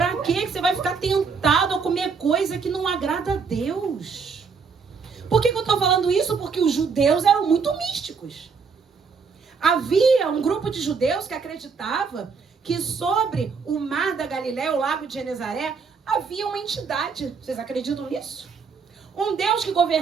quê que você vai ficar tentado a comer coisa que não agrada a Deus? Por que eu tô falando isso? Porque os judeus eram muito místicos. Havia um grupo de judeus que acreditava que sobre o mar da Galileia, o lago de Genezaré, havia uma entidade. Vocês acreditam nisso? Um Deus que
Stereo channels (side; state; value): left; quieter; 5.4 dB